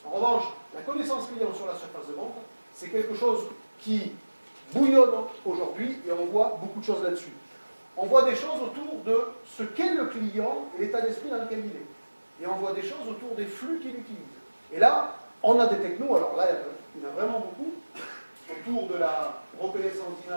En revanche, la connaissance client sur la surface de vente, c'est quelque chose qui bouillonne aujourd'hui, et on voit beaucoup de choses là-dessus. On voit des choses autour de ce qu'est le client et l'état d'esprit dans lequel il est. Et on voit des choses autour des flux qu'il utilise. Et là, on a des technos, alors là, il y en a vraiment beaucoup, autour de la reconnaissance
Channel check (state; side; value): inverted; both; correlation -1.00